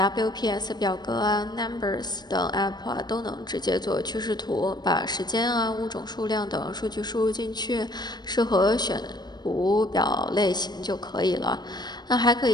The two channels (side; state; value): right; late; 0.20 ms